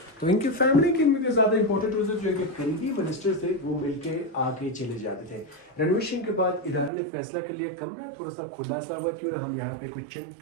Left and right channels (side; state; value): left; drops out; at 6.9 s